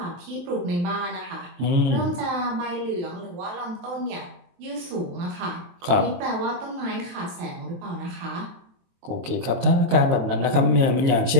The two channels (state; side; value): late; left; 23 ms